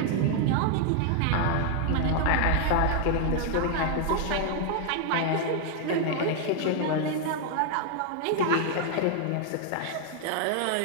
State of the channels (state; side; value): different; both; correlation 0.00